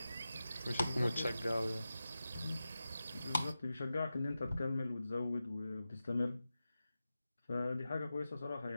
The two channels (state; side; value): inverted; both; correlation -0.93